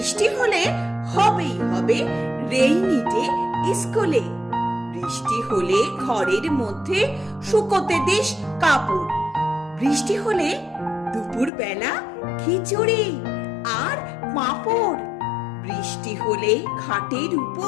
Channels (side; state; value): right; drops out; at 11.5 s